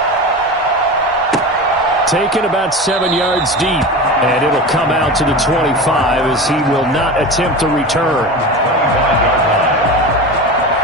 Taken about 7 yards deep, and it'll come out to the 25 as he will not attempt to return. 25-yard line.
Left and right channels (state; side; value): normal; both; correlation 0.28